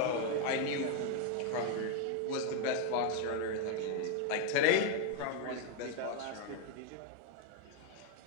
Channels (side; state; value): both; different; correlation 0.01